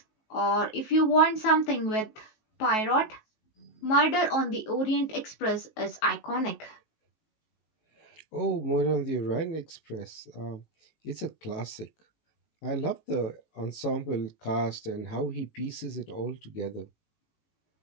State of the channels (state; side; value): late; right; 19 ms